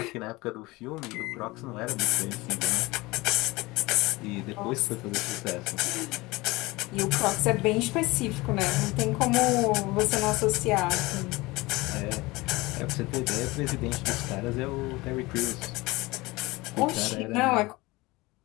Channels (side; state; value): right; quieter; 21.8 dB